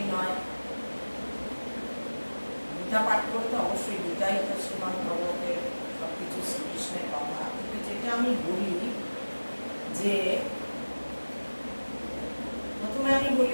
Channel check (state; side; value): inverted; both; correlation -1.00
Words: নয়। গীতা পাঠ করতে অবশ্যই, গীতাই তো শ্রীমদ্ ভগবতের সবকিছু শ্রীকৃষ্ণের কথা। কিন্তু যেটা আমি বলি যে প্রথমে আমি